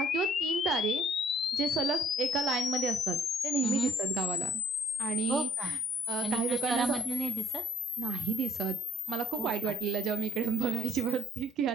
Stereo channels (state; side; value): normal; both; correlation 0.61